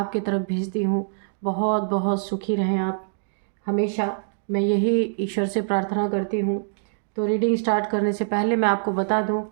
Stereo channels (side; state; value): left; silent; digital silence